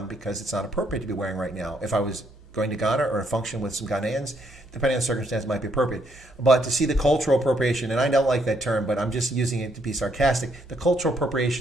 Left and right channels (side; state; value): both; normal; correlation 0.73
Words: because it's not appropriate to be wearing right now. If I was going to Ghana or a function with some Ghanaians, depending on the circumstance, it might be appropriate. But to see the cultural appropriation, and I don't like that term, but I'm just using it to be sarcastic, the cultural